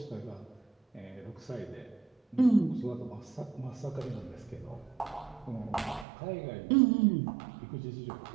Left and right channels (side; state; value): left; drops out; at 6.1 s